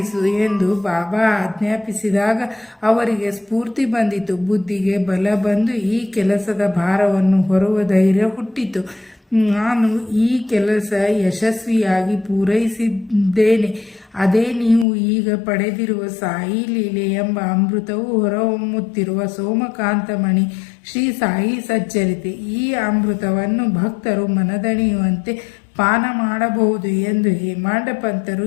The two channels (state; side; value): drops out; right; at 14.9 s